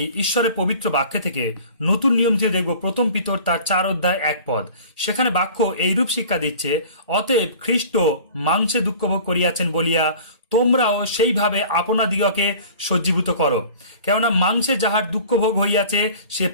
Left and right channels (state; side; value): inverted; both; correlation -0.44